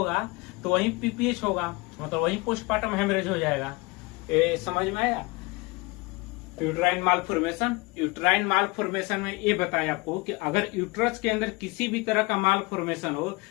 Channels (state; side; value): quieter; right; 24.9 dB